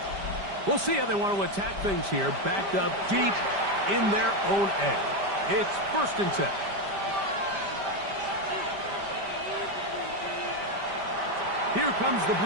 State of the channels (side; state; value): left; late; 5.1 ms